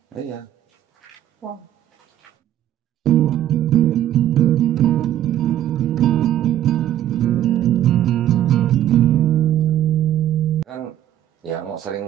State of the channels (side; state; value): left; quieter; 12.0 dB